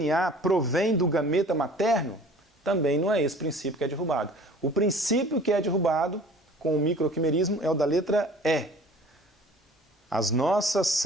provêm do gameta materno? Também não é esse princípio que é derrubado. O princípio que é derrubado com o microquimerismo é o da letra E. As nossas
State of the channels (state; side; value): normal; both; correlation 0.48